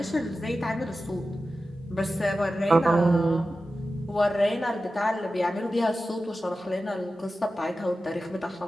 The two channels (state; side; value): normal; both; correlation 0.93